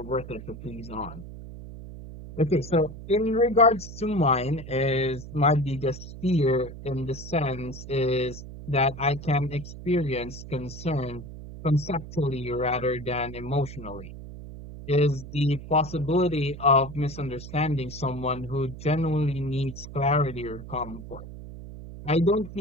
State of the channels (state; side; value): noise; right; hum, 12 dB below the sound